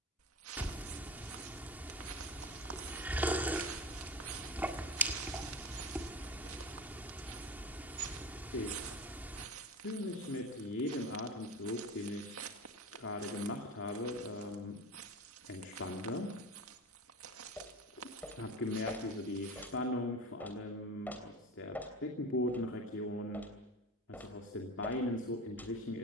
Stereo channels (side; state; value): both; normal; correlation 0.29